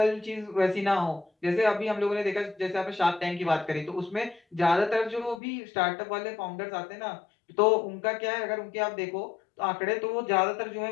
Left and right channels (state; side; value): drops out; right; at 5.4 s